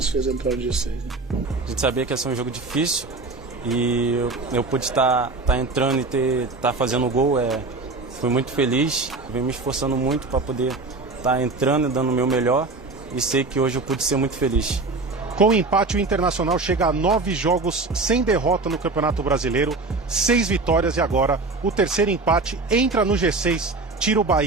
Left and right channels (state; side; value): quieter; left; 3.5 dB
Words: fez entrar no G6. Né? A gente sabia que ia ser um jogo difícil e eu pude estar entrando e estar fazendo o gol. Fui muito feliz, venho me esforçando muito para poder estar entrando e dando o meu melhor e sei que hoje eu pude ser muito feliz. Com o empate, o Internacional chega a 9 jogos sem derrota no Campeonato Brasileiro, 6 vitórias e agora o terceiro empate entra no G6, tira o